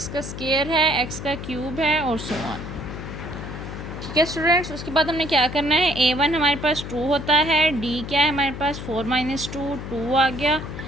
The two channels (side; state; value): left; noise; hum, 8 dB below the sound